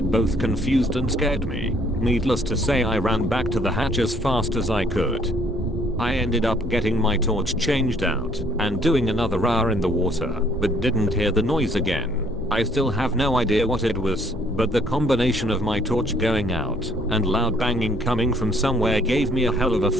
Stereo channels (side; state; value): both; normal; correlation 0.63